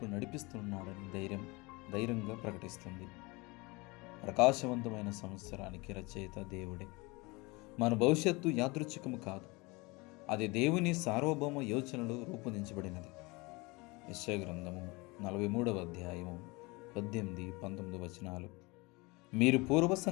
నడిపిస్తున్నాడని ధైర్యంగా ప్రకటిస్తుంది. ప్రకాశవంతమైన సంవత్సరానికి రచయిత దేవుడే. మన భవిష్యత్తు యాదృచ్ఛికము కాదు, అది దేవుని సార్వభౌమ యోచనలో రూపొందించబడినది. యెషయా గ్రంథము 43వ అధ్యాయము 18, 19 వచనాలు. మీరు పూర్వ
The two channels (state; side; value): quieter; right; 25.3 dB